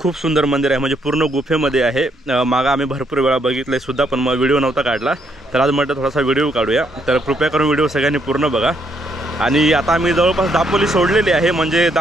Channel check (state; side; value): normal; both; correlation 0.73